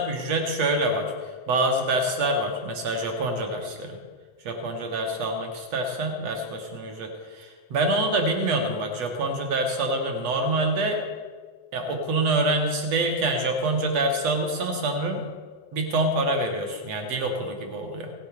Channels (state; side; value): late; left; 8.2 ms